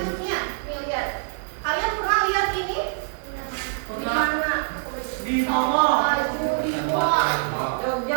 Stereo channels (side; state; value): left; silent; digital silence